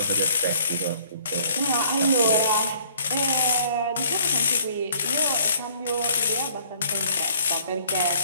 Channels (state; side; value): inverted; both; correlation -0.58